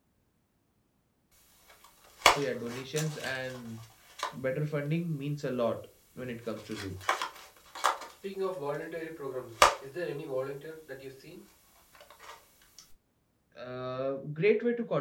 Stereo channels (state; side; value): identical; both; correlation 1.00